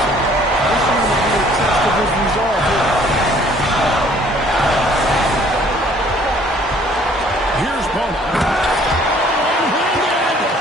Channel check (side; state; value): both; normal; correlation 0.58